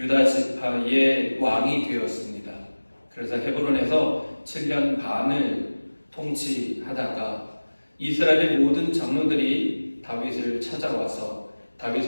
지파의 왕이 되었습니다. 그래서 헤브론에서 7년 반을 통치하다가 이스라엘의 모든 장로들이 다윗을 찾아와서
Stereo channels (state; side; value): inverted; both; correlation -1.00